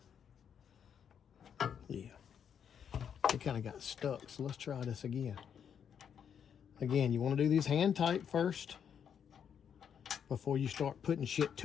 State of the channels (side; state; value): right; quieter; 8.0 dB